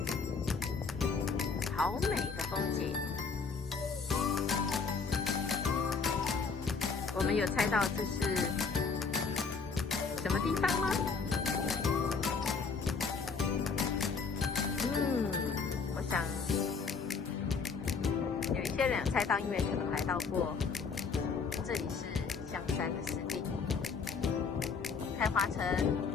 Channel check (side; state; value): right; quieter; 5.1 dB